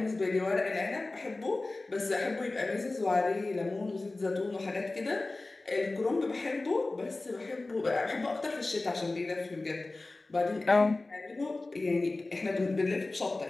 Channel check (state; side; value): quieter; right; 3.1 dB